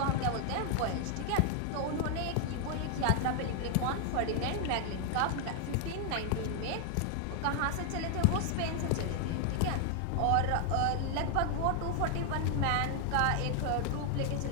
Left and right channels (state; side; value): different; both; correlation 0.00